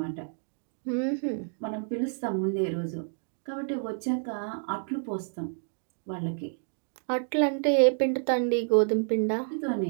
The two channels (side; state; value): left; silent; 58 dB below the other